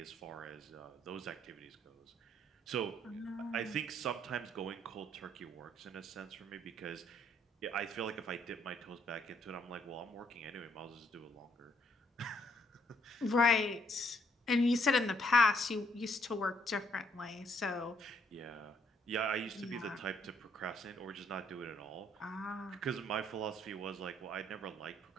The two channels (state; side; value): normal; both; correlation 0.69